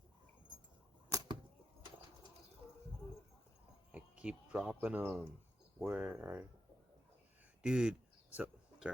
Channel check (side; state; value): both; normal; correlation 0.85